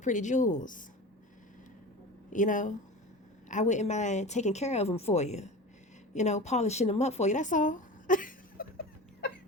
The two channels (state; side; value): normal; both; correlation 0.32